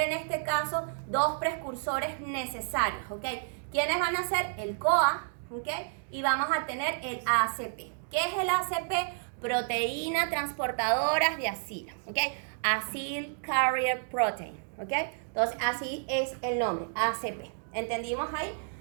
este caso dos precursores necesarios, ¿ok? ¿Quiénes van a ser? El CoA, ¿ok? Y vamos a tener el ACP. ¿Qué es el ACP? Proteína transportadoras de acilo, ¿ok? Acyl Carrier Protein, ¿ok? Entonces, así es el nombre, ACP. ¿Entendimos ahí?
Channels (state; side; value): silent; left; digital silence